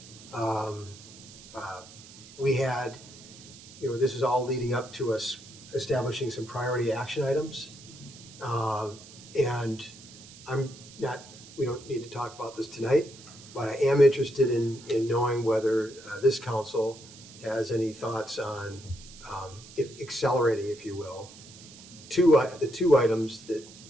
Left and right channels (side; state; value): right; noise; hiss, 19 dB below the sound